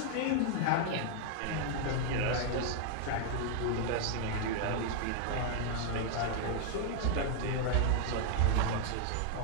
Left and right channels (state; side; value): different; both; correlation 0.00